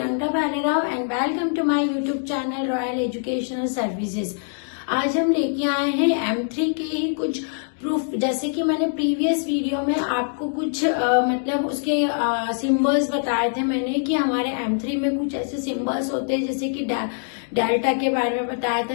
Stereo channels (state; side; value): silent; right; digital silence